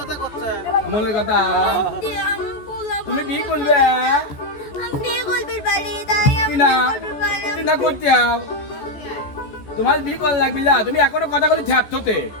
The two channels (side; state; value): right; late; 14 ms